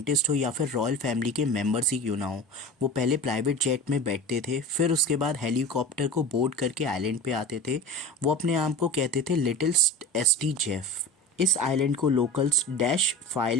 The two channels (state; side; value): normal; both; correlation 0.33